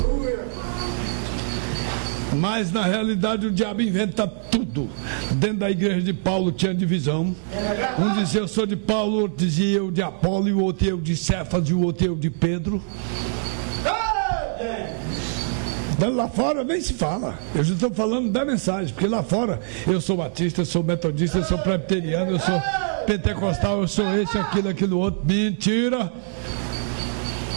Mas na realidade o diabo inventa tudo. Dentro da igreja de Paulo tinha divisão. Um dizia eu sou de Paulo, o outro dizia eu de Apolo, e o outro eu de Cefas, e o outro eu de Pedro. Lá fora nem se fala. Eu já estou falando da mensagem, porque lá fora eu sou batista, eu sou metodista, eu sou presbiteriano, eu sou pentecostal, eu sou esse, aquilo outro. Mentira.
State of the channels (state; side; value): silent; left; digital silence